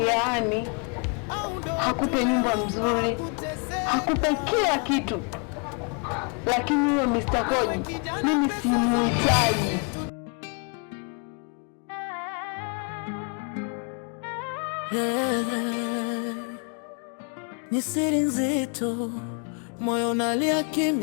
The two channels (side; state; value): right; quieter; 36.8 dB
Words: yaani hakupe nyumba mzuri, hakupe kila kitu, lakini huyo Mr. Koji mimi simuhitaji. Ni siri nzito, moyo unalia